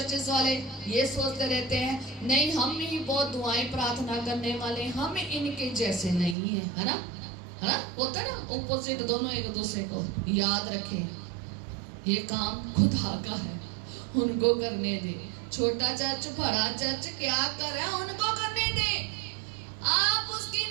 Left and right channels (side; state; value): left; drops out; at 6.4 s